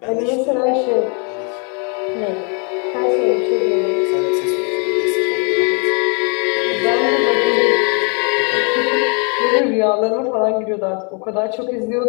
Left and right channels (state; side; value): quieter; right; 36.8 dB